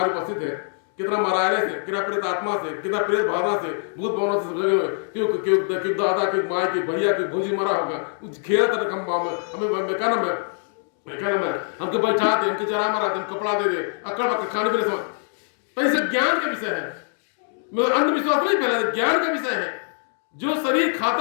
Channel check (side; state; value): right; silent; digital silence